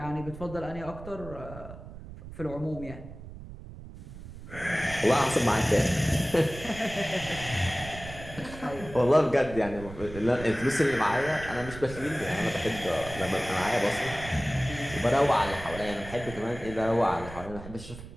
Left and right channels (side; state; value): right; noise; rumble, 13 dB below the sound